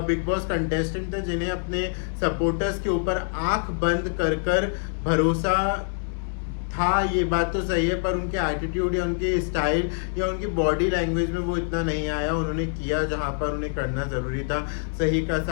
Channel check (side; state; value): right; silent; 61 dB below the other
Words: बिग बॉस कंटेस्टेंट थे जिन्हें अपने सपोर्टर्स के ऊपर आंख बंद कर कर भरोसा था, ये बात तो सही है, पर उनके एटीट्यूड या उनके स्टाइल या उनकी बॉडी लैंग्वेज में वो इतना नहीं आया। उन्होंने किया जहाँ पर उन्हें करना ज़रूरी था, सही का